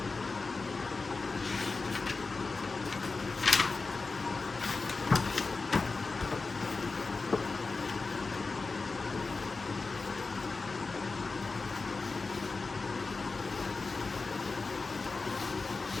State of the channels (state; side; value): quieter; right; 4.0 dB